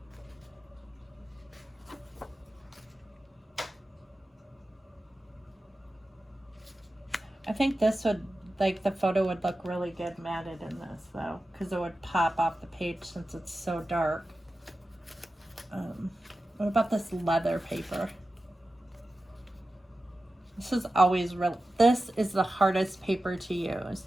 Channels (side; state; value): both; normal; correlation 0.94